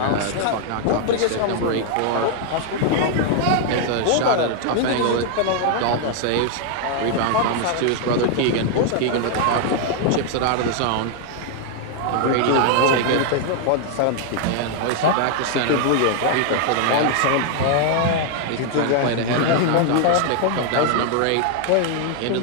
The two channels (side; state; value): both; different; correlation 0.00